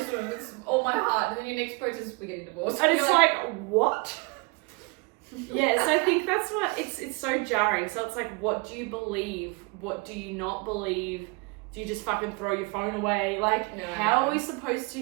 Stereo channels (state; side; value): quieter; left; 29.0 dB